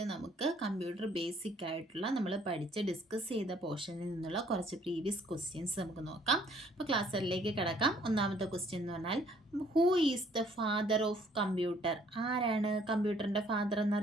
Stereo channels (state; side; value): normal; both; correlation 0.62